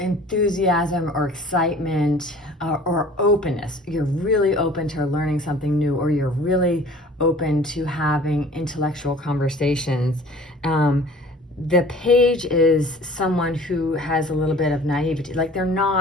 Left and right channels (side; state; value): both; normal; correlation 0.48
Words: or excitement or openness. You're really open to learning something new, or you're really open to having intellectual conversations. The page is someone who has a little bit of naivety, like they're